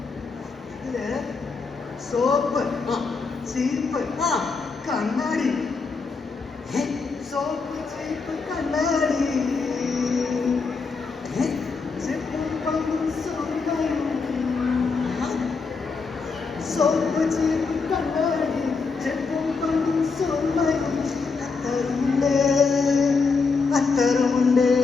ഇതില് സോപ്പ്, ചീപ്പ്, കണ്ണാടി. സോപ്പ്, ചീപ്പ്, കണ്ണാടി, ചെപ്പും പമ്പും സ്വർണ്ണവും. സോപ്പ്, ചീപ്പ്, കണ്ണാടി, ചെപ്പും പമ്പും സ്വർണ്ണവും. അത്തറുമുണ്ട്, അത്തറുമുണ്ട്,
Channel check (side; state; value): right; quieter; 4.6 dB